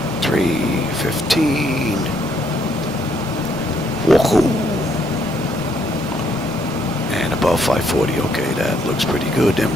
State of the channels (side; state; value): both; normal; correlation 0.71